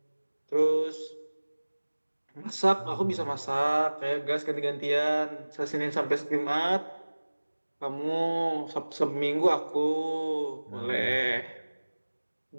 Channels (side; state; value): both; inverted; correlation -1.00